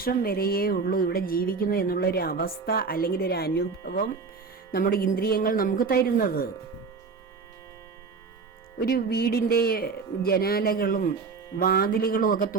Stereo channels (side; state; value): left; quieter; 4.8 dB